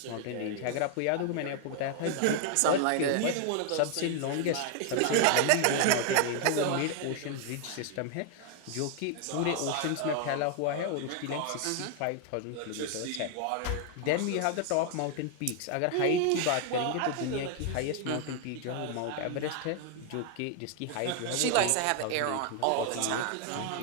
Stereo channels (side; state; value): both; different; correlation 0.00